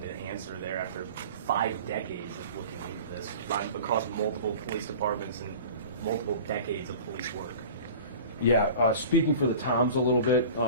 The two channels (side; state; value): both; inverted; correlation -0.40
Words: an answer there after 5 decades of looking into this, across multiple police departments and multiple decades of police work? Yeah, speaking for the Toms a little bit,